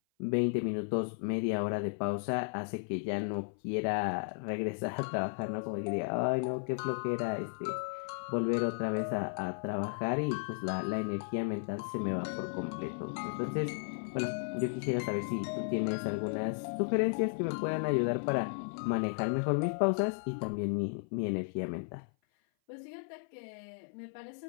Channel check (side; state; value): right; silent; 55 dB below the other